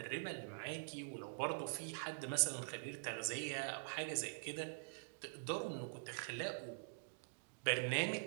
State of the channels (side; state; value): left; silent; digital silence